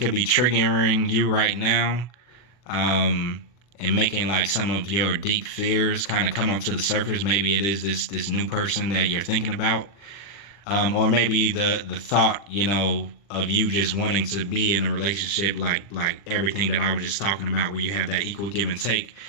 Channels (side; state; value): right; late; 40 ms